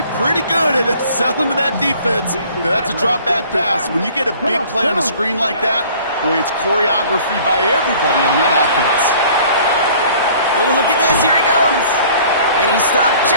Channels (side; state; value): both; inverted; correlation -0.52